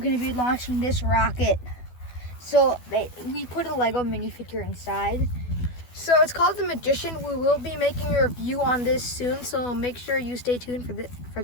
to be launching this rocket. So we put a Lego minifigure inside. So it's called the Magician. We will be making a review on this soon, so make sure you stay tuned for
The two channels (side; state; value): right; late; 12 ms